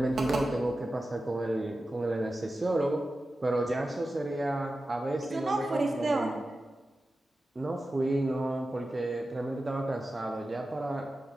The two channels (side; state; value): both; normal; correlation 0.93